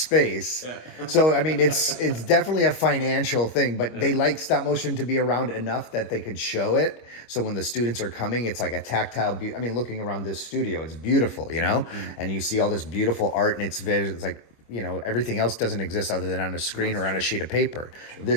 Yeah. So, I mean, it's definitely a financial thing, but they like stop motion to be around enough that they could show it. So when the students are coming, it's like a tactile, I mean, looking around this studio, it's beautiful, you know? Mm-hmm. And you see all this beautiful art, and it's like, you know, everything else doesn't exist other than on a screen or on a sheet of paper. Sure.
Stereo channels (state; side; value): late; right; 25 ms